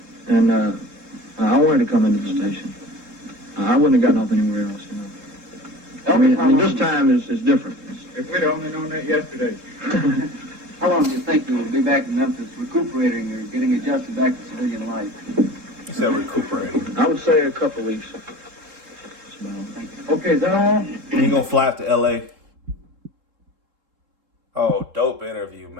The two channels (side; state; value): left; late; 3.7 ms